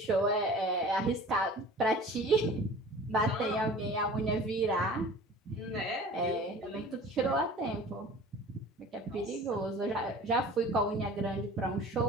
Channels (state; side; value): normal; both; correlation 0.43